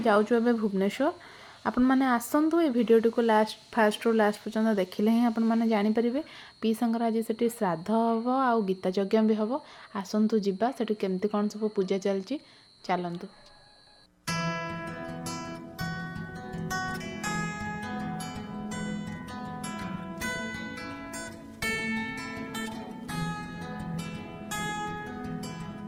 जाऊँ एवं भुवनेश्वर आपण मैंने आसतु ये भिडटी को लास्ट फास्ट रू लास्ट पर्यटन देखिले ही आपण मैंने जानीपर पीसांकर आज से श्राद्ध हम आ गीता यज्ञ भी हम आसतु जावा से केमती कौन सब पूजा चलती चलतु।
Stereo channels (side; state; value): both; identical; correlation 1.00